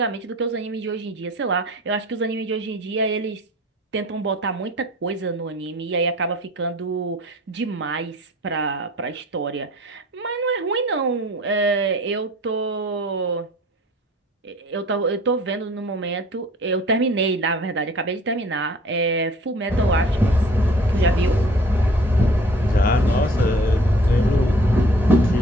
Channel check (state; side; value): normal; both; correlation 0.50